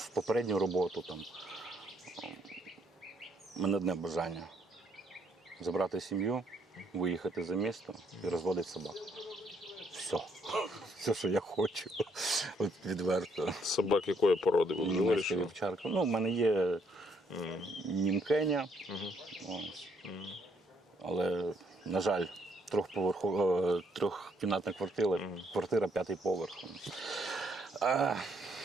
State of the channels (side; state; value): both; normal; correlation 0.70